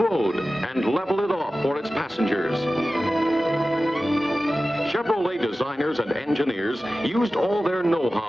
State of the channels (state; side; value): normal; both; correlation 0.95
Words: and level it off for its passengers. Chevrolet designers and engineers used all their